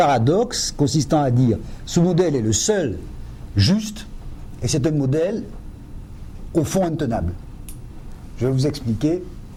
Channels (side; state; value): both; identical; correlation 1.00